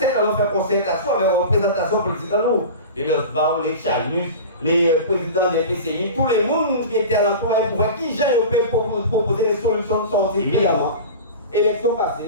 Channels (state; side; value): inverted; both; correlation -0.32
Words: qu'on faire concertation avec la représentation politique dans nous. Les Losbar, les Chanus, les présidents des PCI, tous les mondes qui étaient à l'entour pour voir qui j'ai proposer des solutions de sortie évidemment. Élection